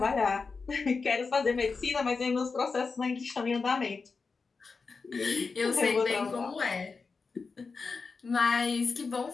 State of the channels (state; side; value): quieter; right; 4.6 dB